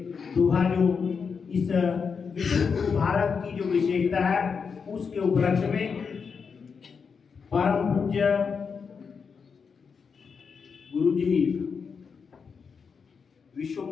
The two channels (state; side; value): quieter; right; 5.8 dB